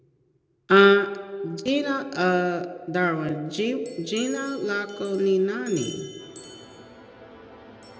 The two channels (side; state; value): both; identical; correlation 1.00